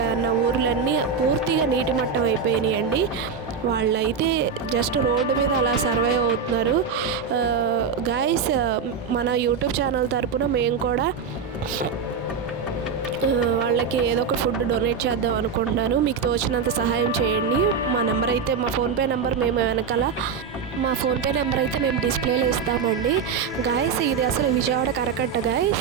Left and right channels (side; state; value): left; quieter; 6.0 dB